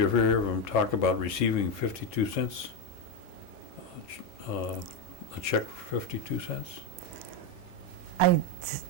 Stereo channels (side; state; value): both; normal; correlation 0.08